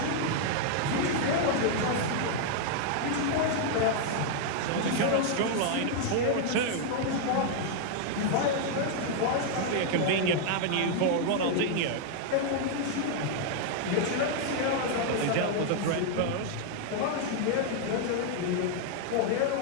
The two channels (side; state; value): both; different; correlation 0.00